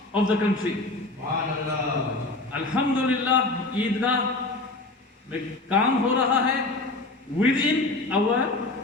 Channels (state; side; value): quieter; right; 3.0 dB